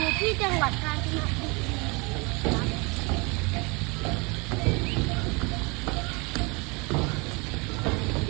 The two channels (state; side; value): quieter; left; 28.5 dB